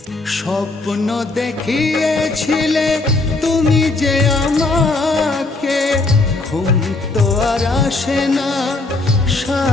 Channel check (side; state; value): right; quieter; 3.2 dB